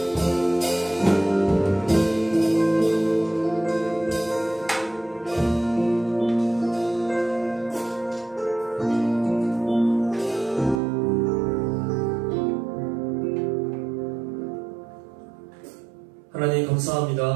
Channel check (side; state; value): left; drops out; at 10.8 s